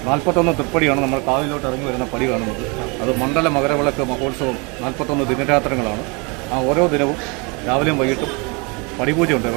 41 തൃപ്പടിയാണ് നമ്മൾ കാവിലോട്ട് ഇറങ്ങി വരുന്ന പടി കാണുന്നത്. അത് മണ്ഡല മകരവിളക്ക് മഹോത്സവം 41 ദിനരാത്രങ്ങളാണ്. ആ ഓരോ ദിനവും രാവിലെയും വൈകിട്ടും പടിപൂജയുണ്ട്.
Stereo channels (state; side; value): quieter; left; 30.5 dB